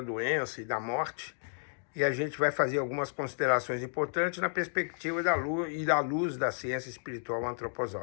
e da morte. E a gente vai fazer algumas considerações importantes na perspectiva da luz da ciência espiritual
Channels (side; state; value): right; silent; digital silence